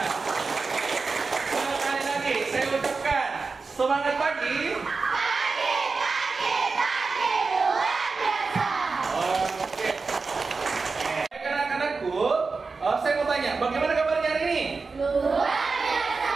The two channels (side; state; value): left; quieter; 4.4 dB